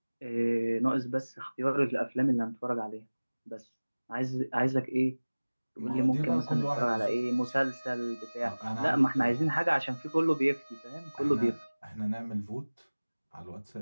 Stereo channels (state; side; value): inverted; both; correlation -1.00